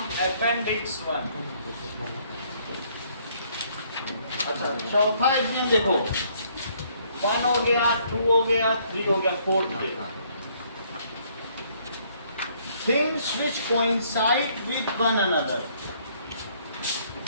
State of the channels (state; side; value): inverted; both; correlation -0.65